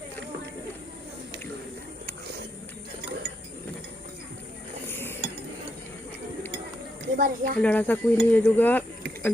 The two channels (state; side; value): normal; both; correlation 0.80